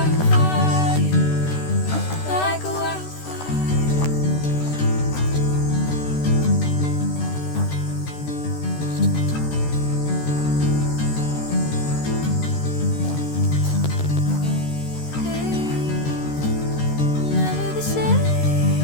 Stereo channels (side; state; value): right; late; 13 ms